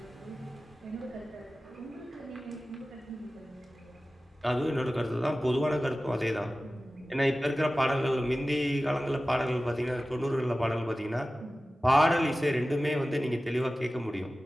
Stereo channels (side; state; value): both; normal; correlation 0.96